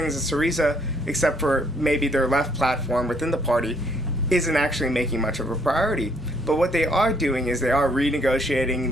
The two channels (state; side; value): normal; both; correlation 0.67